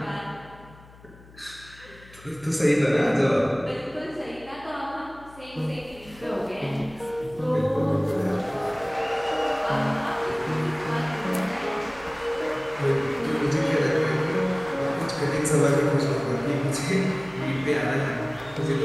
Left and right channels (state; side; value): noise; left; hum, 22 dB below the sound